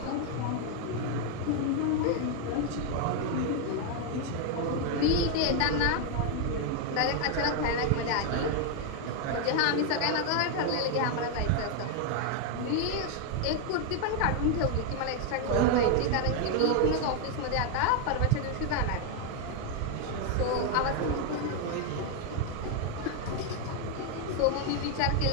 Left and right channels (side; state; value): both; different; correlation 0.01